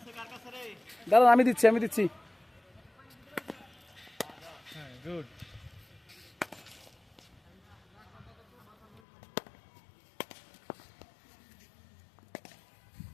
দাদা আমি দিচ্ছি হ্যাঁ গুড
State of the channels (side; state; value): right; drops out; at 9.0 s